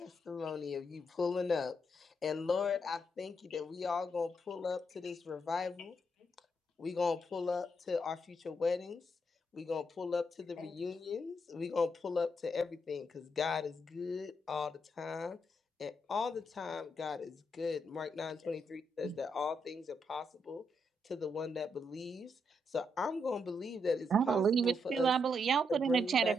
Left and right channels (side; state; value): both; normal; correlation 0.79